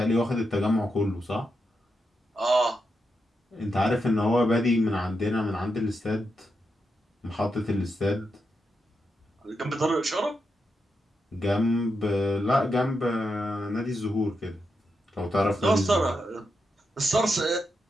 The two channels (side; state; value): both; normal; correlation 0.85